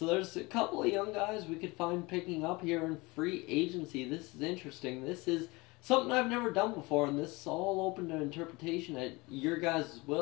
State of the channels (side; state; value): right; quieter; 24.3 dB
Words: there's a couple of young guys we could find picking up here in free agency. This is interesting. This is something I've never done before, and this is all open to interpretation at your guys'